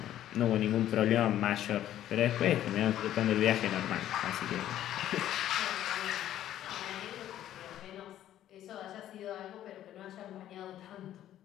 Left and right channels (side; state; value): right; quieter; 12.1 dB